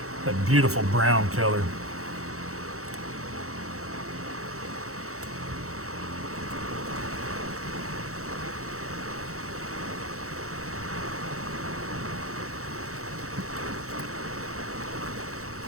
That beautiful brown color.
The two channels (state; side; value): late; left; 0.64 ms